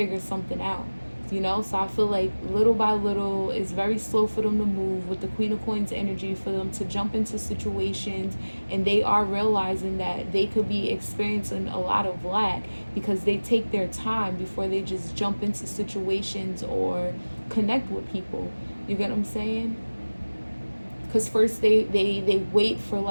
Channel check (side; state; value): both; inverted; correlation -1.00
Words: something out. You know, so I feel like little by little, it's very slow for them to move with the Queen of Coins energy, for them to jump into situations, and they are realizing that they could be experiencing a lot of lack because they take their time before they just jump into situations or connect with people. You get what I'm saying? Because first they wait for